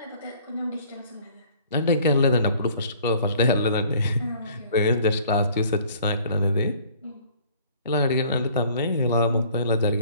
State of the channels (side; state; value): both; inverted; correlation -0.55